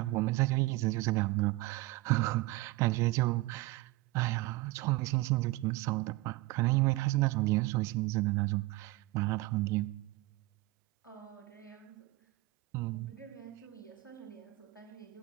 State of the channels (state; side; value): quieter; left; 20.1 dB